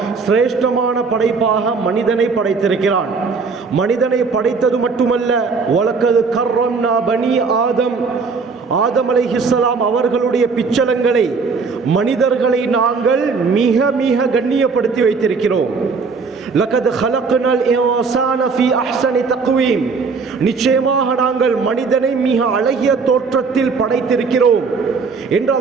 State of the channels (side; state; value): left; quieter; 4.9 dB